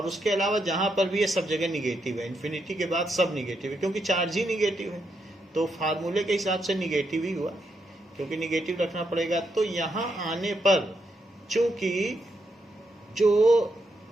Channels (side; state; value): both; normal; correlation 0.80